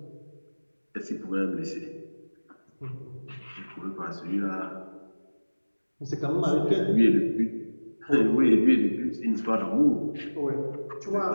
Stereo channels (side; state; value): both; inverted; correlation -1.00